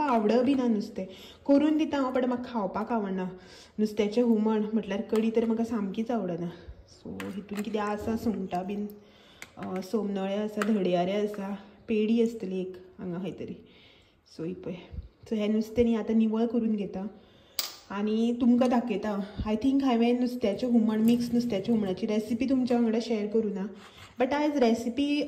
आवड बी ना नुस्तें। करून दिता हांव, बट म्हाका खावपाक आवडना। नुस्त्याचें हुमण म्हटल्यार कडी तर म्हाका सामकीच आवडना। सो हितून कितें आसा, सुंगटां बीन, सोमनळे आसा, धडयारे आसा, पेडी आसतली एक हांगा खंय तरी। सो ही पळय। सो हें नुस्तें न्ही आतां निवळ करून घेता आनी तुमकां दाखयता। आय थिंक हांवें नुस्त्याचें हुमण, मिक्स नुस्त्याच्या हुमणाची रेसिपी तुमच्या वांगडा शेअर करूना, बट आयज रेसिपी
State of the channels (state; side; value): identical; both; correlation 1.00